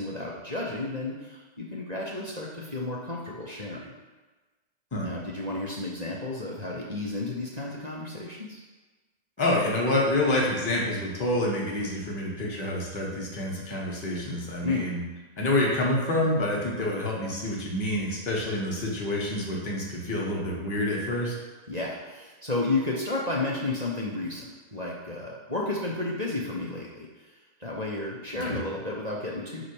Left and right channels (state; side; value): late; left; 1.9 ms